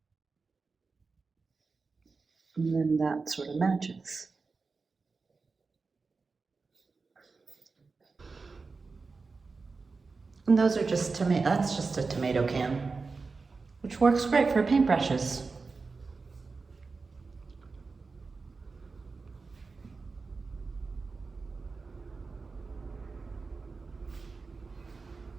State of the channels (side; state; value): left; quieter; 4.3 dB